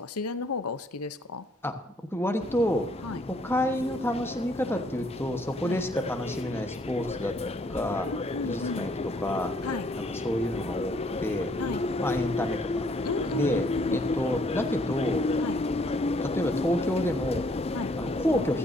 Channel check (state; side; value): normal; both; correlation 0.65